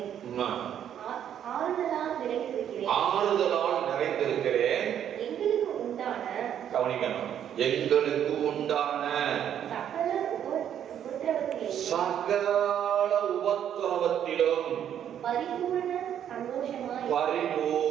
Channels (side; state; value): left; quieter; 9.7 dB